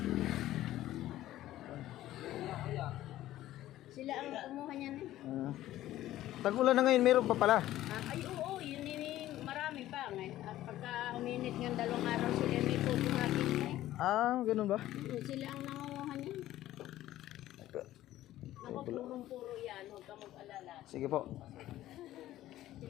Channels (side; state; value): right; quieter; 14.3 dB